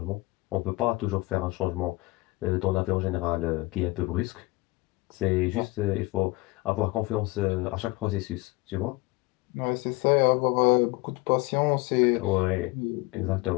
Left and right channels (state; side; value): quieter; right; 22.6 dB